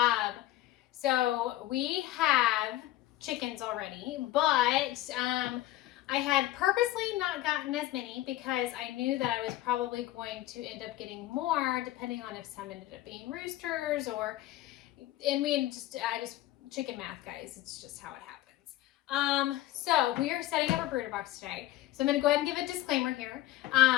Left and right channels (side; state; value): right; quieter; 15.4 dB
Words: So we have chickens already, but I had purposely not gotten as many because I knew that I was probably going to end up getting more depending on if some ended up being roosters chicken math, guys. It's just how it happens. So we are setting up a brooder box today. So I'm going to go ahead and give a disclaimer here.